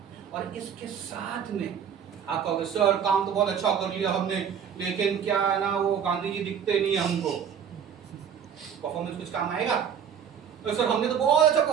और इसके साथ में आप कहोगे सर काम तो बहुत अच्छा कर लिया हमने, लेकिन क्या है ना, वो गांधी जी दिखते नहीं है हमको, परफॉर्मेंस कुछ काम आएगा? तो सर हमने तो बहुत अच्छा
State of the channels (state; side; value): quieter; left; 8.0 dB